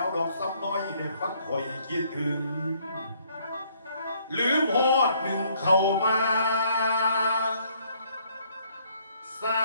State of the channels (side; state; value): both; inverted; correlation -0.65